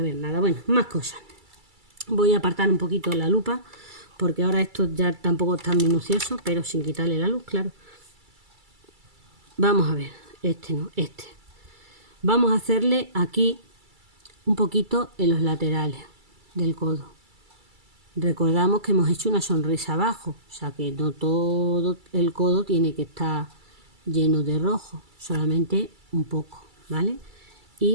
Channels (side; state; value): left; late; 2.3 ms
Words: ver nada. Bueno, más cosas. Voy a apartar un poquito la lupa porque ahora esto ya tampoco es tan minucioso, pero sin quitarle la luz, claro. Vamos a ver, este no, este. Vamos a hacerle aquí un poquito en los laterales del codo. Recordamos que hemos hecho una sonrisa abajo, o sea que no todo el codo tiene que estar lleno de rojo, solamente un poco, ¿vale?